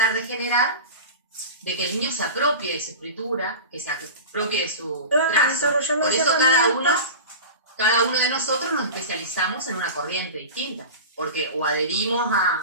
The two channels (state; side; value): inverted; both; correlation -0.30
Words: de generar de que el niño se apropie de su escritura, que se apropie de su trazo. Por eso cada uno de nosotros nos especializamos en una corriente distinta, porque o adherimos